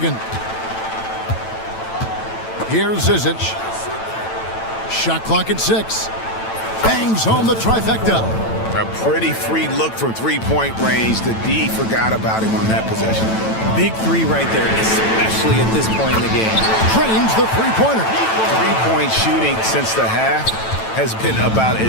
Here's Zizic. Shot clock at 6. Bangs home the trifecta. A pretty free look from 3-point range. The D forgot about him on that possession. Big 3 right there, especially at this point in the game. Trains the 3-pointer. 3-point shooting since the half has been about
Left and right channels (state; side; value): late; right; 9.0 ms